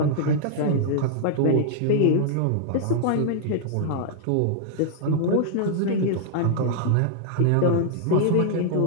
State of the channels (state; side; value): different; both; correlation -0.01